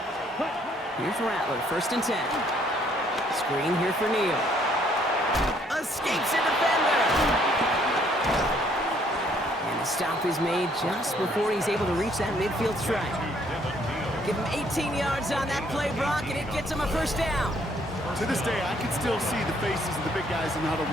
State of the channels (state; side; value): normal; both; correlation 0.65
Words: Here's Rattler, 1st and 10. Screen here for Neal. Escapes a defender. And the stop is made just before he's able to reach that midfield stripe. Give him 18 yards on that play, Brock, and it gets him a first down. To this day, I can still see the faces of the big guys in the huddle.